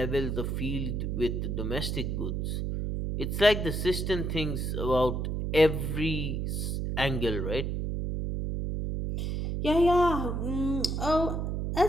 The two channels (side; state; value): right; noise; hum, 1 dB below the sound